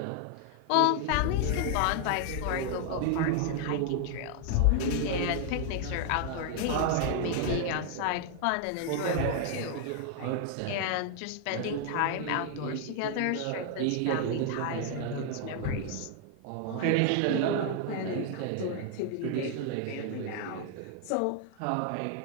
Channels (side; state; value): both; different; correlation 0.00